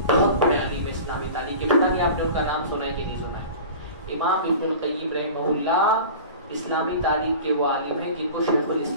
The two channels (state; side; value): inverted; both; correlation -0.37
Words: بہت بڑے عالم ہے اسلامی تاریخ کے. پتہ نہیں آپ نے ان کا نام سنا ہے کہ نہیں سنا ہے. امام ابن القیم رحمہ اللہ اسلامی تاریخ کے وہ عالم ہیں جن کو شیخ